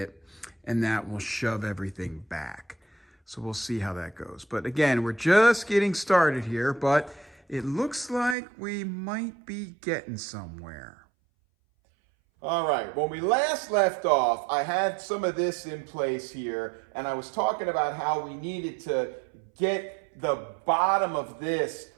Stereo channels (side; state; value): left; drops out; at 8.3 s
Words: and that will shove everything back. So we'll see how that goes. But again, we're just getting started here, but it looks like we might be getting somewhere. All right, when we last left off, I had some of this in place here, and I was talking about how we needed to get the bottom of this